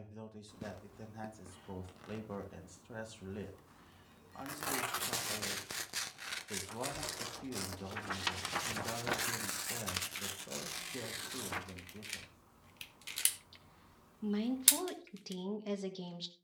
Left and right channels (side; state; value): both; identical; correlation 1.00